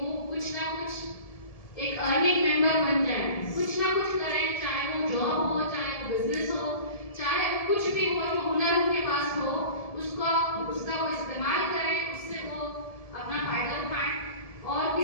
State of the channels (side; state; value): right; late; 1.7 ms